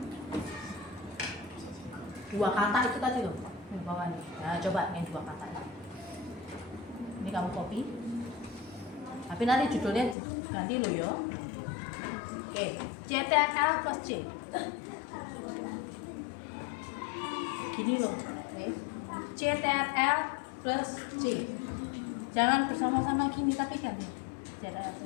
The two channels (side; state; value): right; drops out; at 10.2 s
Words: Dua kata itu tadi loh, di bawah nih. Nah, coba yang 2 kata ini kamu copy, tapi nanti judulnya ganti loh yo. Oke, CTRL plus C. Gini loh, oke. CTRL plus C. Jangan bersama-sama gini tapi ganti. CTRL